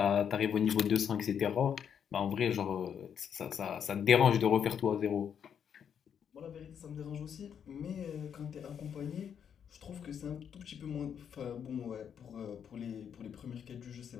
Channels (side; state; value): right; quieter; 8.1 dB